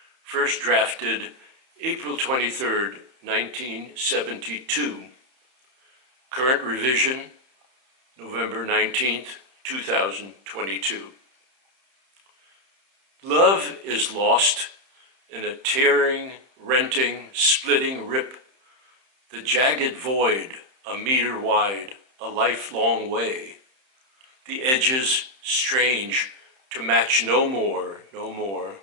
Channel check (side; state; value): left; late; 31 ms